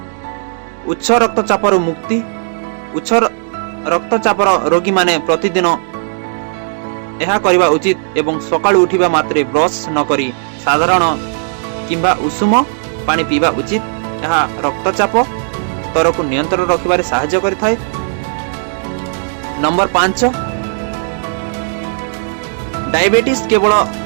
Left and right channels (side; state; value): left; silent; digital silence